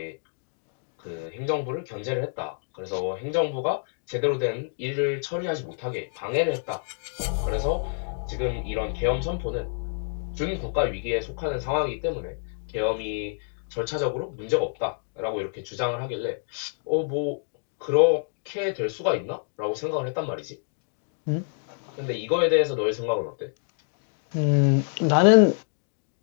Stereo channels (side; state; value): right; silent; digital silence